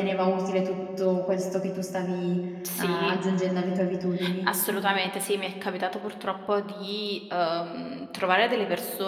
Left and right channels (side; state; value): both; identical; correlation 1.00